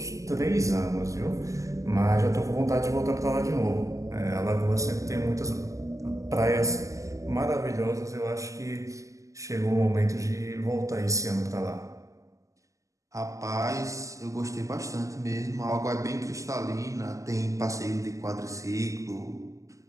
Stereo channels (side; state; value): left; late; 0.16 ms